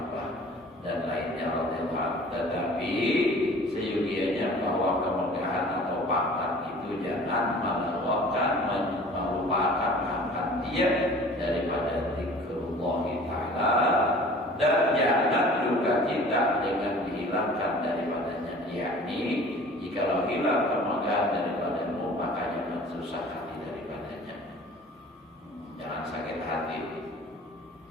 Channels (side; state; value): both; normal; correlation 0.46